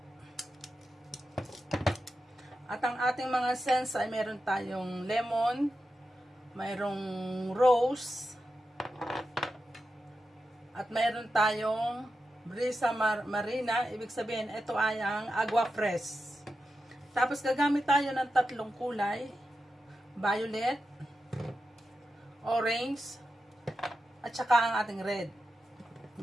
at ang ating mga scents ay meron tayong lemon, mayroong rose, at mayroon tayong brisa marina, ibig sabihin ito ay ang agua fresh. Tapos gagamit tayo ng tatlong kulay, violet, orange, at saka ang ating red.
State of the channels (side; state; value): both; normal; correlation 0.90